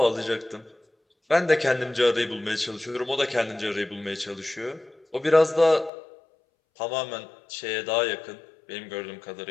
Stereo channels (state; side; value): drops out; right; at 5.9 s